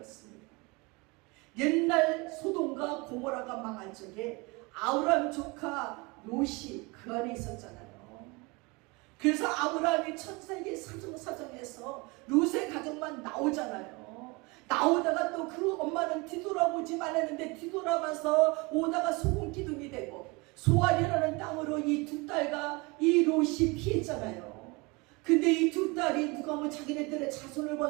옛날 소돔과 고모라가 망한 적에 아브람 조카 롯이 그 안에 있었잖아요. 그래서 아브라함이 천사에게 사정사정해서 롯의 가정만 나오잖아요. 나오다가 또 그 엄마는 뒤돌아보지 말았는데 뒤돌아봐서 오다가 소금 기둥이 되고 소알이라는 땅으로 이 두 딸과 이 롯이 피했잖아요. 근데 이 두 딸이 누가 뭐 자기네들의 자손을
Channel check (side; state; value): left; quieter; 26.6 dB